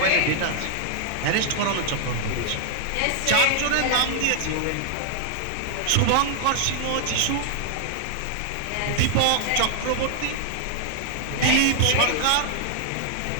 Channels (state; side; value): different; both; correlation 0.00